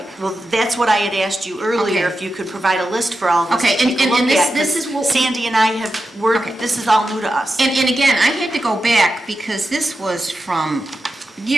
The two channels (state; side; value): normal; both; correlation 0.90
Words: Well, that's what I had asked you earlier, Okay. if you could provide a list for all of us Okay, to take a and look this- at. this 'Cause is what- Sandy and I Okay. this is all new to us. And again, I had to go back because this was from